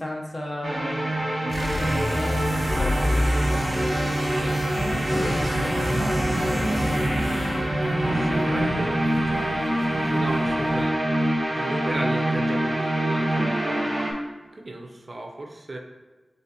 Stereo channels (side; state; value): both; normal; correlation 0.96